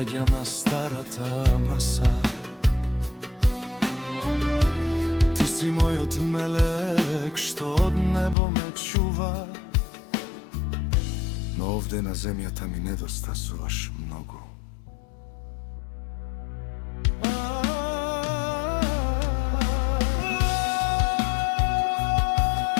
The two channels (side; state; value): right; drops out; at 8.3 s